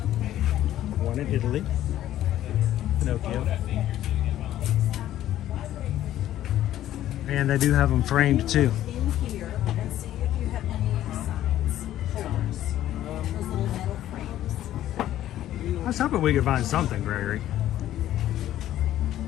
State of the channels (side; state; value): right; quieter; 12.8 dB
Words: one in Italy. Pinocchio. And they do have them framed too. In here and see if you have any signs, holders, those little metal frames. I was hoping we could find something, Gregory.